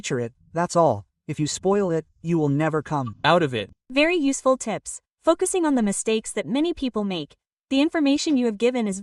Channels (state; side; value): identical; both; correlation 1.00